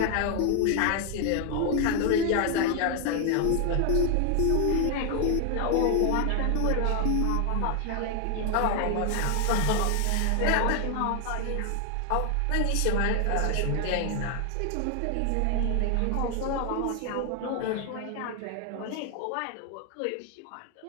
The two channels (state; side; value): different; both; correlation 0.00